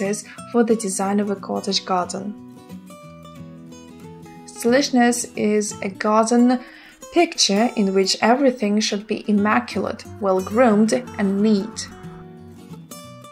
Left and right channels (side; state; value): both; identical; correlation 1.00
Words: for the design of a cottage garden. Stylishness is a garden picture in which everything should be immaculate, well-groomed, and neat.